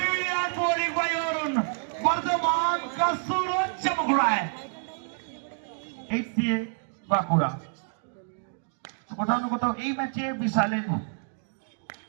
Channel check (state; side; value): silent; left; 59 dB below the other